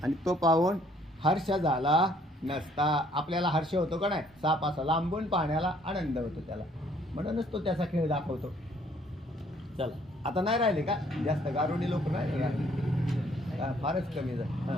आणि तो पाहून हर्ष झाला नसता. आपल्याला हर्ष होतो का नाही? साप असा लांबून पाहण्याला आनंद होतो त्याला. म्हणूनच तो त्याचा खेळ दाखवतो. चला आता नाही राहिले का जास्त गारुडी लोक नाही का? फारच कमी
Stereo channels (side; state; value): both; normal; correlation 0.62